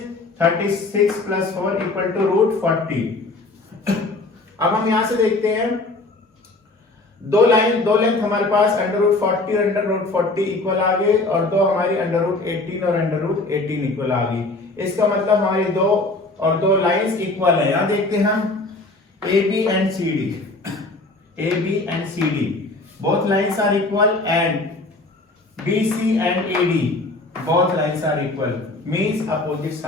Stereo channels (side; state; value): right; quieter; 3.1 dB